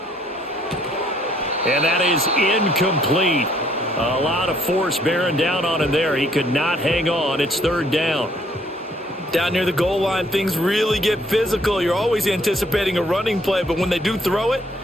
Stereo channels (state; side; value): normal; both; correlation 0.65